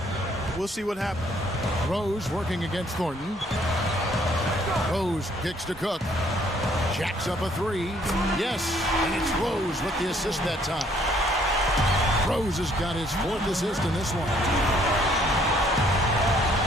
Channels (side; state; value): both; normal; correlation 0.64